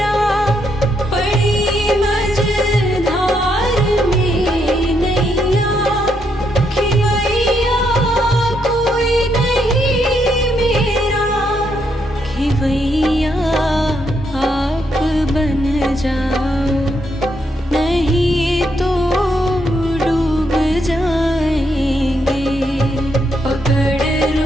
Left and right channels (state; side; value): normal; both; correlation 0.77